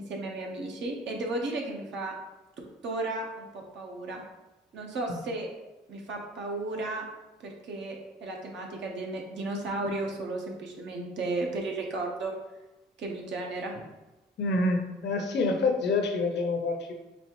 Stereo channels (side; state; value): both; normal; correlation 0.45